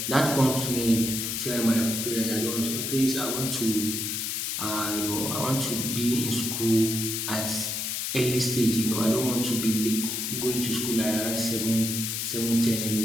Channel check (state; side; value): noise; left; hiss, 2 dB below the sound